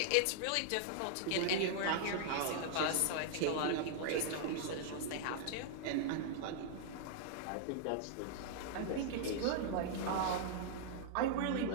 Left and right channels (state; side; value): different; both; correlation -0.01